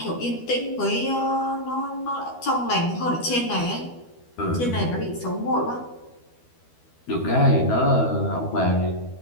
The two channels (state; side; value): late; right; 12 ms